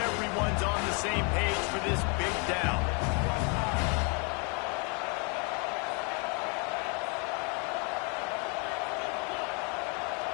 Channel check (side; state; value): right; quieter; 35.4 dB